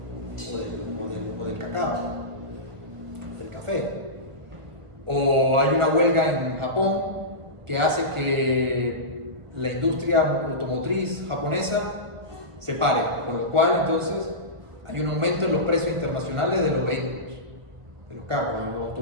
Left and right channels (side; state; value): left; late; 1.2 ms